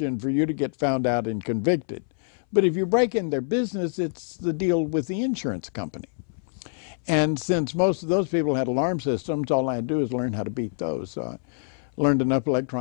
for you to get found out and convicted. But if you break in their business, it's the deal with the insurance company. And since most of those people had alarm systems, all I had to do is learn how to beat those. So I learned enough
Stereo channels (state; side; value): silent; right; 61 dB below the other